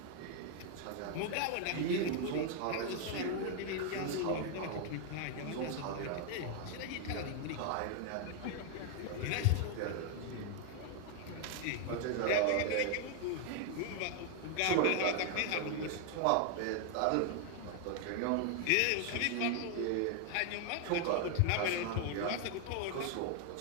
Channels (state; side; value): different; both; correlation 0.00